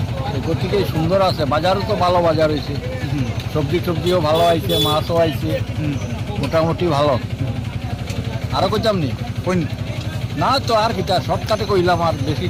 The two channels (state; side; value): identical; both; correlation 1.00